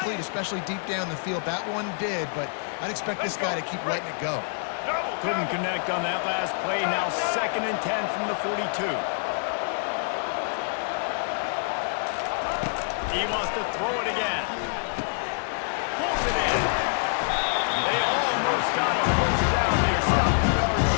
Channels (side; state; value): right; silent; 61 dB below the other